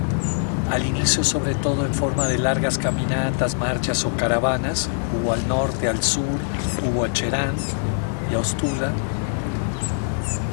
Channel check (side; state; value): right; silent; digital silence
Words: al inicio sobre todo en forma de largas caminatas, marchas o caravanas, hubo al norte, al sur, hubo a Cherán y a Ostula,